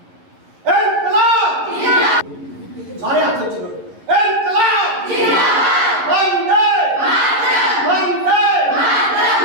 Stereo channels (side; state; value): left; late; 11 ms